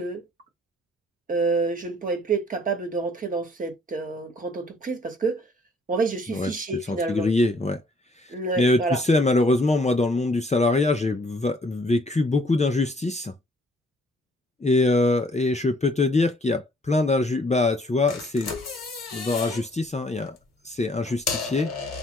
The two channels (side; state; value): both; normal; correlation 0.62